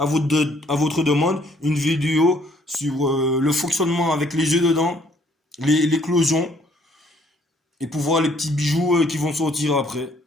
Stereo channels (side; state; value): both; normal; correlation 0.64